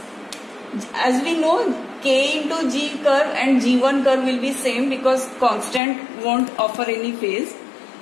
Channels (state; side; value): drops out; right; at 5.8 s